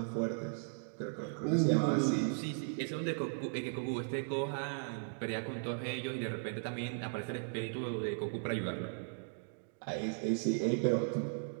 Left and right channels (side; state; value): left; silent; digital silence